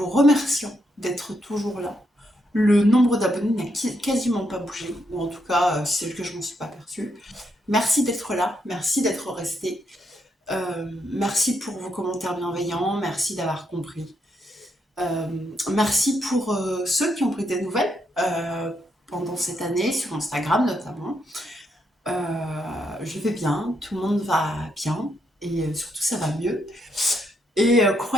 remerciant d'être toujours là. Le nombre d'abonnés n'a quasiment pas bougé, ou en tout cas, c'est que je ne m'en suis pas aperçue. Merci d'être là, merci d'être resté. Merci pour vos commentaires bienveillants, merci d'avoir compris. Merci pour ceux qui ont pris des nouvelles pendant cette année, sur Instagram notamment. Je vais bien, tout le monde va bien, et surtout ça va mieux. Et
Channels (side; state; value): both; normal; correlation 0.78